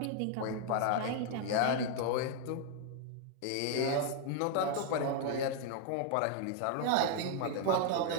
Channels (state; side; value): different; both; correlation 0.00